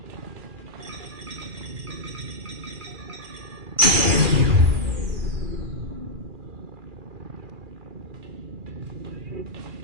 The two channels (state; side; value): late; left; 2.4 ms